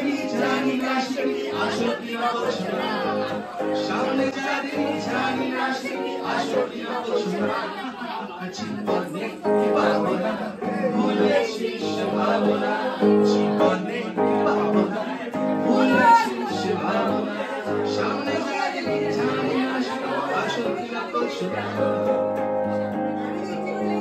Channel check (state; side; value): identical; both; correlation 1.00